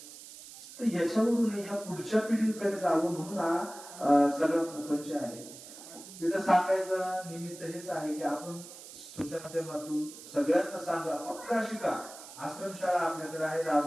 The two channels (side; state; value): right; noise; hiss, 15 dB below the sound